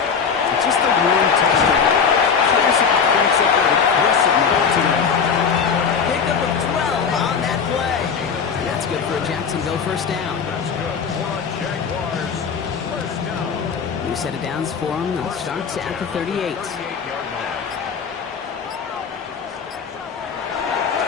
But just a one touchdown. Curious if he thinks up an aggressive move today. Pickup of 12 on that play. And that's good for a Jacksonville first down. That's good for a Jaguars first down. New set of downs for them. They'll start at the 38. 38-yard line.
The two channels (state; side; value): quieter; right; 6.3 dB